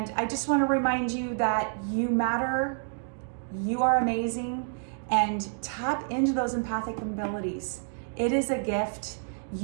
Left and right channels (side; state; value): left; silent; digital silence